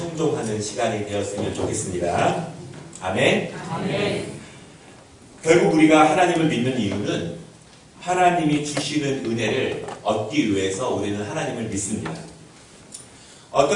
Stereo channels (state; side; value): identical; both; correlation 1.00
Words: 시간이 되었으면 좋겠습니다. 아멘. 아멘. 결국 우리가 하나님을 믿는 이유는 하나님이 주시는 은혜를 얻기 위해서 우리는 하나님을 믿습니다.